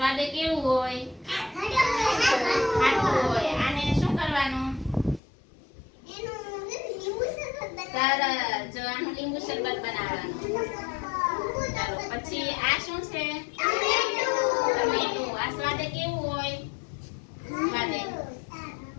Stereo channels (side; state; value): right; drops out; at 5.2 s